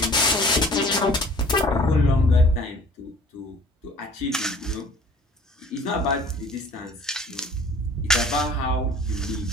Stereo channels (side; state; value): both; normal; correlation 0.50